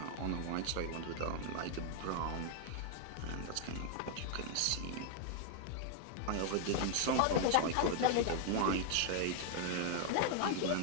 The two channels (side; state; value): both; different; correlation 0.00